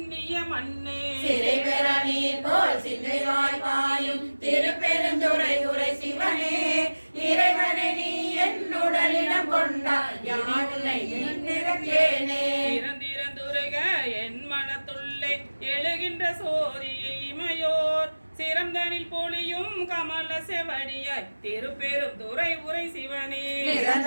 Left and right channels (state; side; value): inverted; both; correlation -1.00